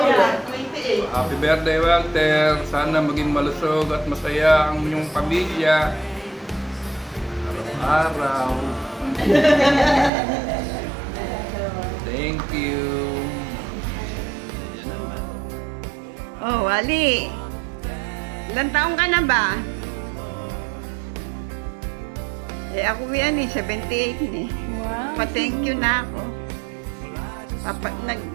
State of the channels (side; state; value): left; drops out; at 10.1 s